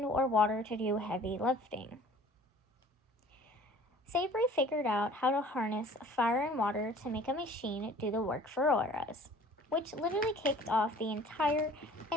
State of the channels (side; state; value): both; normal; correlation 0.49